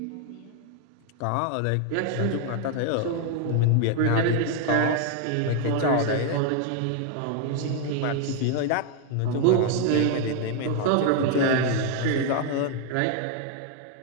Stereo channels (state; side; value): different; both; correlation 0.00